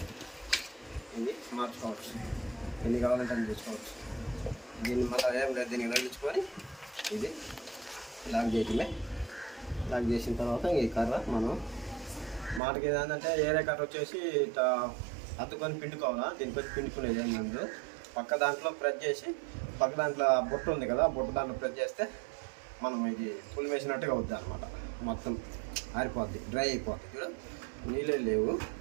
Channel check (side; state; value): left; drops out; at 12.6 s